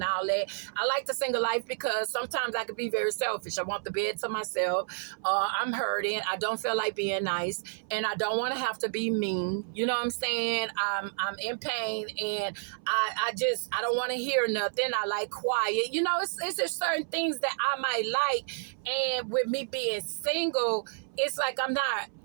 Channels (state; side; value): silent; left; 58 dB below the other